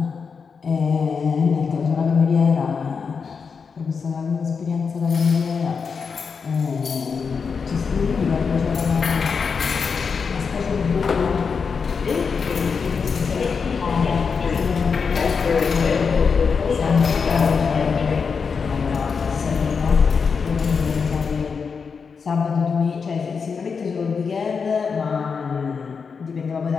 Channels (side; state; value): right; quieter; 5.6 dB